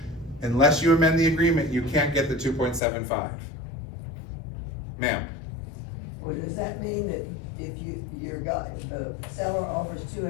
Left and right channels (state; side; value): drops out; right; at 2.8 s